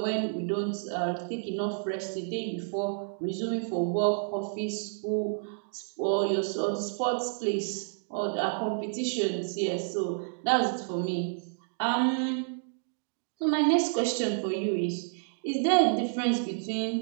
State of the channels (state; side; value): silent; left; digital silence